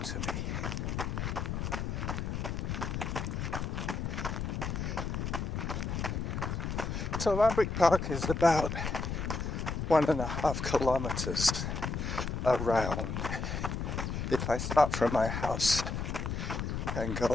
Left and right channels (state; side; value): noise; left; rumble, 2 dB below the sound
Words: me. So Lambrick Park is about 1.5 kilometers around. If I start from my house and go